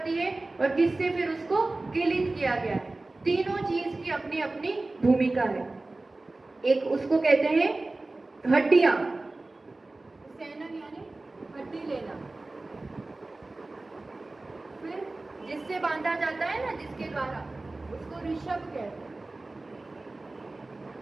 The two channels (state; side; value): quieter; left; 3.1 dB